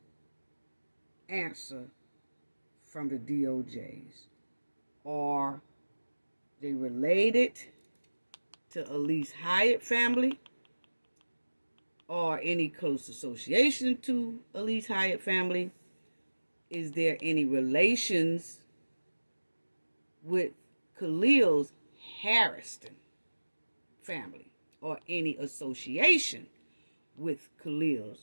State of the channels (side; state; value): both; inverted; correlation -1.00